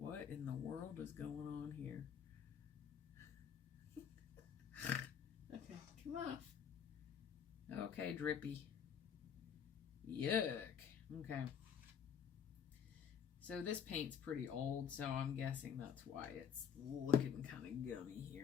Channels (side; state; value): right; quieter; 8.0 dB